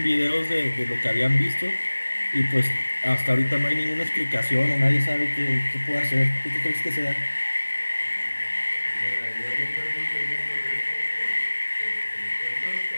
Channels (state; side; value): inverted; both; correlation -1.00